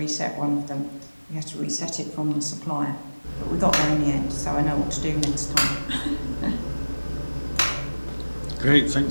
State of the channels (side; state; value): both; inverted; correlation -1.00